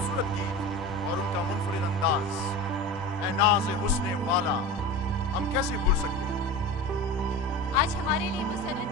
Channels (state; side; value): normal; both; correlation 0.30